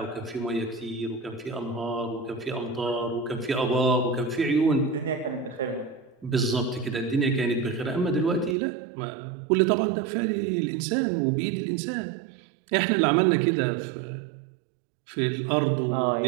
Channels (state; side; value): drops out; left; at 8.6 s